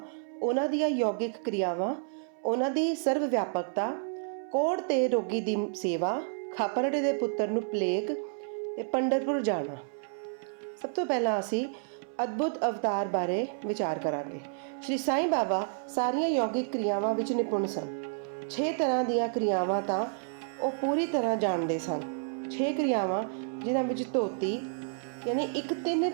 ਉਹਨਾਂ ਦੀਆਂ ਯੋਗਿਕ ਕਿਰਿਆਵਾਂ, ਉਹਨਾਂ ਦੀ ਸਰਵ ਵਿਆਪਕਤਾ, ਕੋੜ ਤੇ ਰੋਗੀ ਦੀ ਸੇਵਾ, ਖਾਪਰੜੇ ਦੇ ਪੁੱਤਰ ਨੂੰ ਪਲੇਗ ਤੇ ਪੰਡਰਪੁਰ ਜਾਣਾ। ਸਭ ਤੋਂ ਪਹਿਲਾਂ ਅਸੀਂ ਅਦਭੁਤ ਅਵਤਾਰ ਬਾਰੇ ਵਿਚਾਰ ਕਰਾਂਗੇ। ਸ਼੍ਰੀ ਸਾਈਂ ਬਾਬਾ ਸਾਰੀਆਂ ਯੋਗਿਕ ਕਿਰਿਆਵਾਂ ਵਿੱਚ ਨਿਪੁੰਨ ਸਨ। 6 ਤਰ੍ਹਾਂ ਦੀਆਂ ਕਿਰਿਆਵਾਂ ਤਾਂ ਉਹ ਪੂਰੀ ਤਰ੍ਹਾਂ ਜਾਣਦੇ ਸਨ। 6 ਕਿਰਿਆਵਾਂ ਜਿਨ੍ਹਾਂ ਵਿੱਚ ਧੋਤੀ ਯਾਨੀ ਇੱਕ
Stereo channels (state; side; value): silent; left; 58 dB below the other